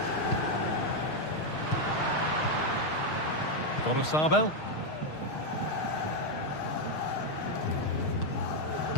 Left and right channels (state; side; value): late; right; 6.5 ms